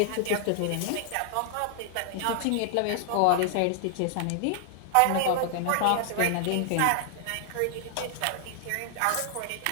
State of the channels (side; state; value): both; different; correlation 0.00